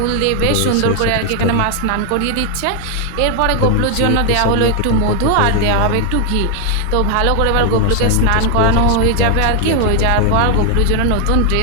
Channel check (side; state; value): both; different; correlation 0.00